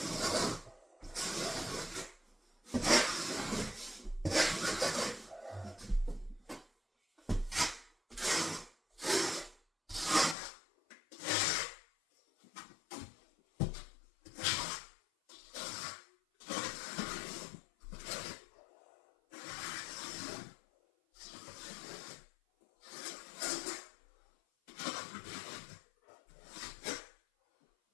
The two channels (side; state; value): right; drops out; at 10.4 s